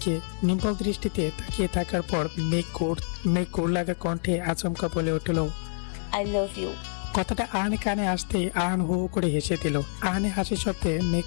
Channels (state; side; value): silent; right; 59 dB below the other